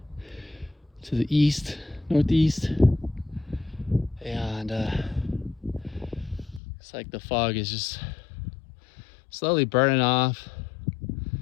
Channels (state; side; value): drops out; right; at 6.6 s